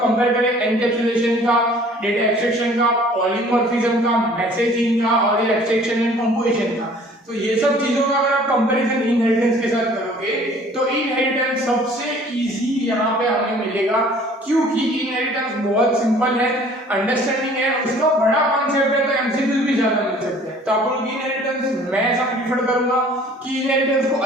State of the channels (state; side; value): normal; both; correlation 0.52